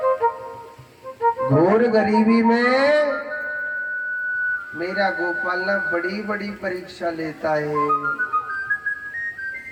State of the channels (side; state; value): both; identical; correlation 1.00